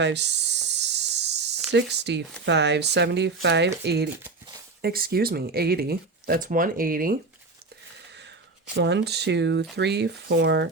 65, 75, 80. Excuse me, 80. That's 180. 1, 2, 3, 4,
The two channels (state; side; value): quieter; left; 3.8 dB